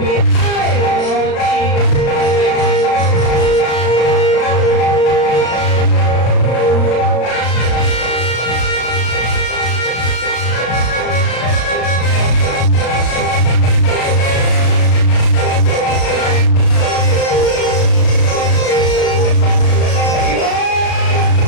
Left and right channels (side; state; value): right; late; 35 ms